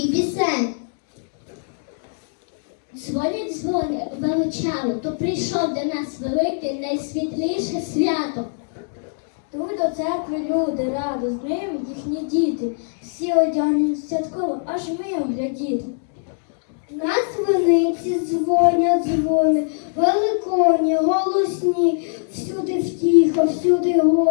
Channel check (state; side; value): silent; right; digital silence